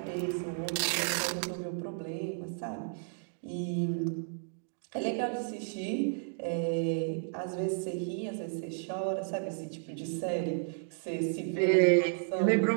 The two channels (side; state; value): left; silent; digital silence